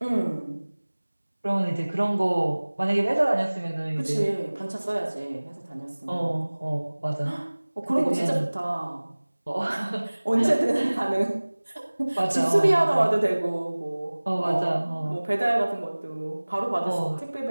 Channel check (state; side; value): inverted; both; correlation -1.00